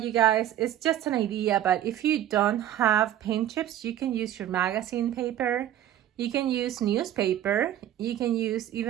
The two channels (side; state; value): left; quieter; 11.7 dB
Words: guys, it's just an idea, but if you don't have paint chips, you can use your magazine paper, you can use newspaper, you can use